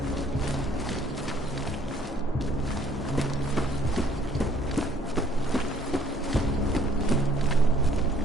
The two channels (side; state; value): both; normal; correlation 0.61